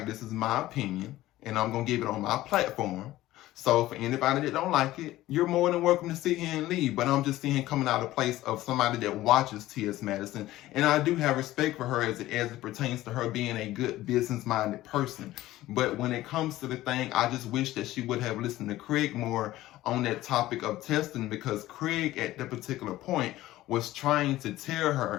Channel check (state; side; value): quieter; right; 15.9 dB